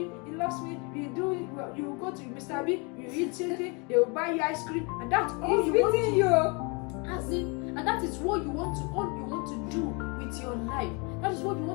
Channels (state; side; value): quieter; right; 31.3 dB